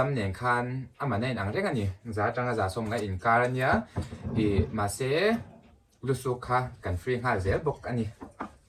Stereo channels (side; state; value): both; identical; correlation 1.00